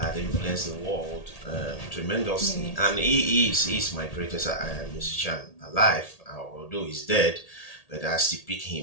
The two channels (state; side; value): late; right; 1.8 ms